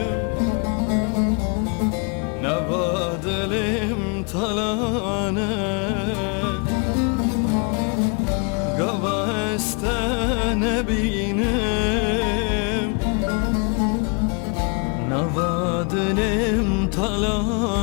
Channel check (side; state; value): right; quieter; 36.3 dB